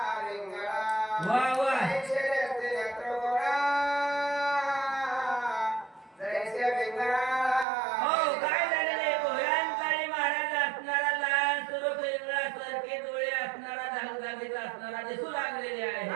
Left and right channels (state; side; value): drops out; left; at 7.7 s